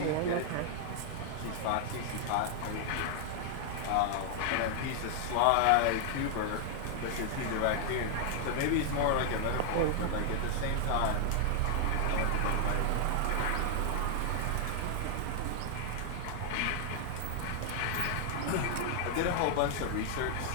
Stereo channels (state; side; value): different; both; correlation 0.00